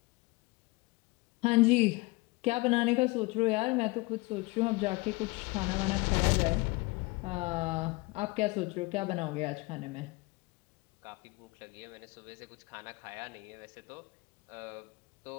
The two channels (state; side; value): quieter; right; 24.5 dB